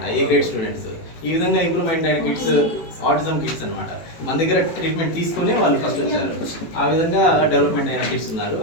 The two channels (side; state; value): right; late; 18 ms